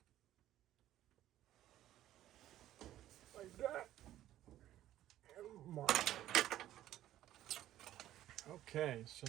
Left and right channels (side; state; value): left; quieter; 13.2 dB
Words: Like that. And mark. Okay, so